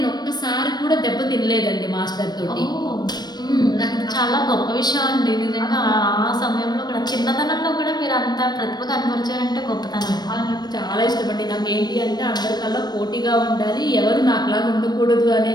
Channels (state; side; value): late; right; 0.20 ms